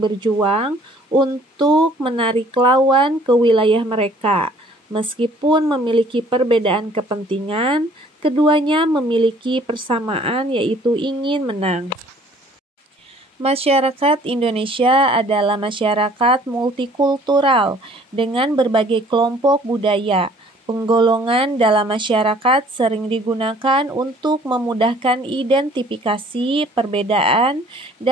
berjuang untuk menarik lawan ke wilayah mereka. Meskipun memiliki perbedaan kepentingan, keduanya memiliki persamaan yaitu ingin menang. Masyarakat Indonesia adalah masyarakat multikultural dengan berbagai kelompok budaya. Penggolongan dalam masyarakat sering digunakan untuk memudahkan identifikasi perbedaan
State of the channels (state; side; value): normal; both; correlation 0.56